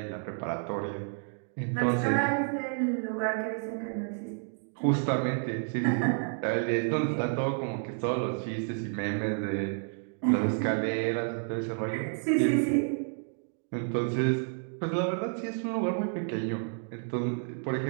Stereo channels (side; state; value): left; silent; 58 dB below the other